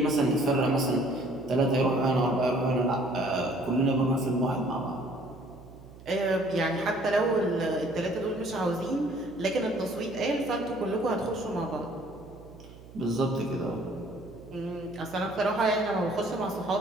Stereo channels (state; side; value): noise; right; hum, 19 dB below the sound